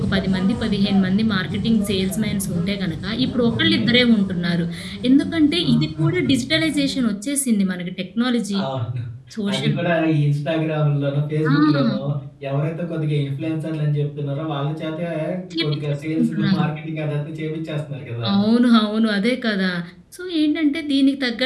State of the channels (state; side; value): identical; both; correlation 1.00